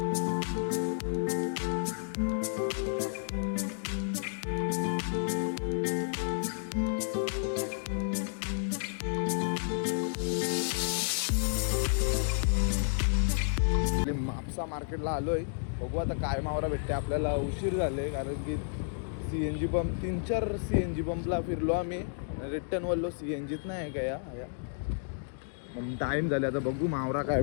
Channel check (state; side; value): silent; right; digital silence